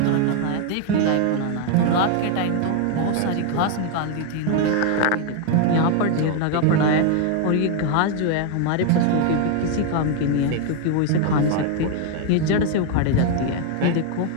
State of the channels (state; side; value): different; both; correlation 0.00